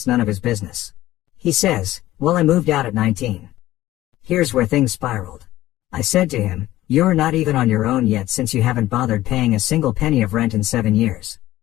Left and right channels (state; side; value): quieter; right; 15.4 dB